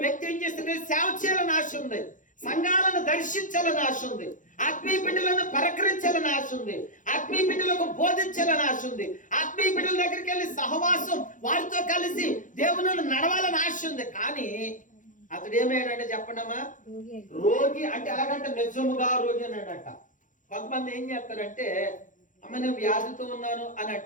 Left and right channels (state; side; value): late; right; 0.37 ms